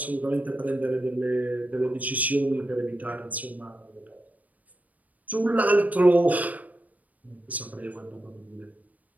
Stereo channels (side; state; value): left; late; 0.074 ms